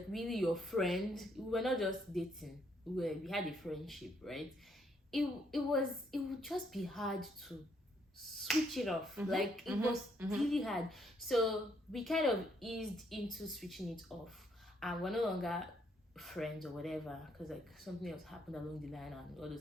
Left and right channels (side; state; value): both; normal; correlation 0.72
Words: really your friend, we were not just dating, we had a friendship, right? It would just be hard to switch it off. Like, it was really hard. So we kind of eased into switching it off, and we're no longer friends or whatever, because like something else happened along the line and all those